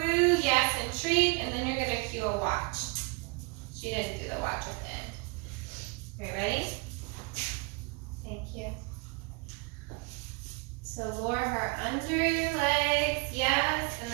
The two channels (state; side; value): quieter; left; 30.2 dB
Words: yes, and treat, and then you're gonna cue a watch. She didn't do the watch at the end. Are you ready? Thank you. So lure her under your legs, yes, and